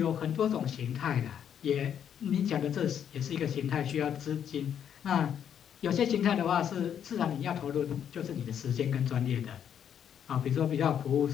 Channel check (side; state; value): right; quieter; 8.9 dB